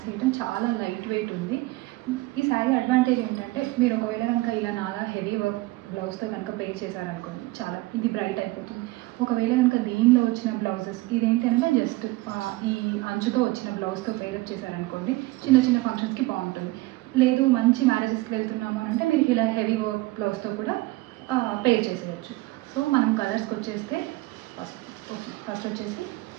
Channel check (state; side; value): quieter; left; 20.3 dB